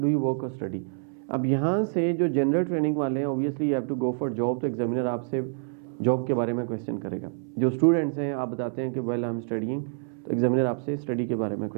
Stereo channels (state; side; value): silent; left; 60 dB below the other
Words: यू वर्क और स्टडी। अब यहाँ से जो जनरल ट्रेनिंग वाले हैं obviously you have to go for job, तो एग्जामिनर आपसे जॉब के बारे में क्वेश्चन करेगा। जो स्टूडेंट्स हैं आप बताते हैं कि वेल आई एम स्टडीइंग, तो एग्जामिनर आपसे स्टडी के बारे में